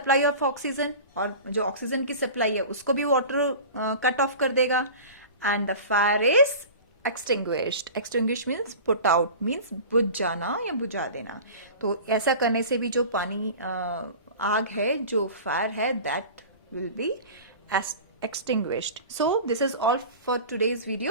of oxygen. और जो oxygen की supply है उसको भी वाटर कट ऑफ कर देगा. And the fire is extinguished. Extinguish means put out, means बुझ जाना या बुझा देना. तो ऐसा करने से भी जो पानी आग है, जो फायर है, that will be extinguished. So this is all for today's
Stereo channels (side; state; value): both; inverted; correlation -0.36